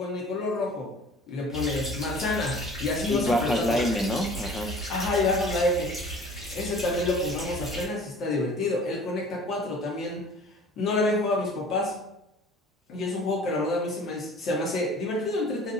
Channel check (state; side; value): normal; both; correlation 0.47